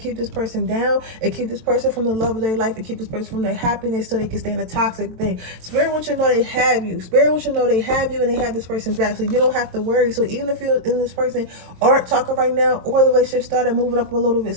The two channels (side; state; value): left; late; 23 ms